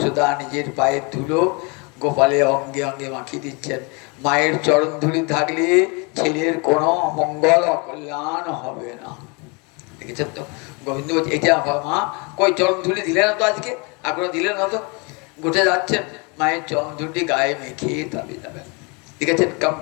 নিজের পায়ের ধুলো গোপালের অঙ্গে অঙ্গে মাখিয়ে দিচ্ছেন। মায়ের চরণ ধুলি থাকলে ছেলের কোনো অমঙ্গল অকল্যাণ হবে না। দেখেছেন তো? গোবিন্দ বলছে এটা মা, কই চরণ ধুলি দিলে না তো আজকে, এখনো দিলে না তো। গোটে যাচ্ছেন, মায়ের চরণ ধুলি গায়ে মেখে তবে যাবেন। দেখেছেন কেমন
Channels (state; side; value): quieter; right; 31.1 dB